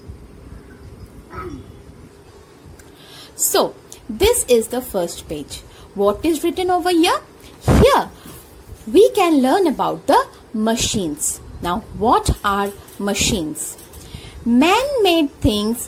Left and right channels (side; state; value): both; identical; correlation 1.00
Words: So this is the first page. What is written over here? Here we can learn about the machines. Now, what are machines? Man-made things